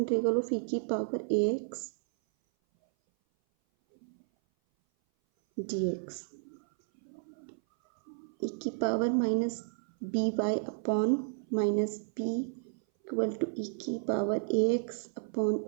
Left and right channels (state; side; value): silent; left; 56 dB below the other